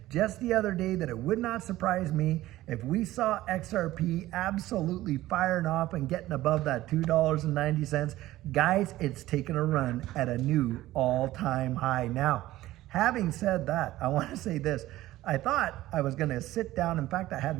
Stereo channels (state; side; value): quieter; left; 16.0 dB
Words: just the other day that it would not surprise me if we saw XRP absolutely firing off and getting above that $2.90. Guys, it's taken a run at a new all-time high. Now, having said that, I want to say this. I thought I was going to sit down. In fact, I had